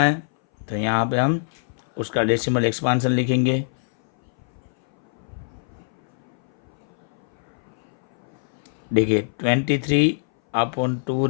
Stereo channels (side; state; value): right; silent; 59 dB below the other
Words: तो यहाँ पे हम उसका डेसिमल एक्सपांसन लिखेंगे। देखिए